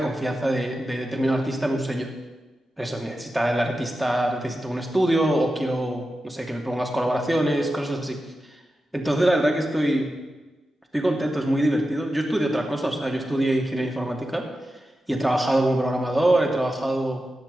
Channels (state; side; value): normal; both; correlation 0.91